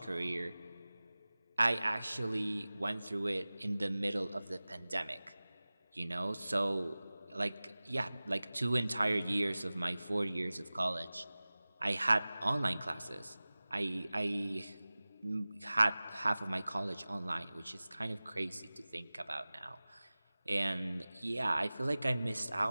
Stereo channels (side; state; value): both; inverted; correlation -0.98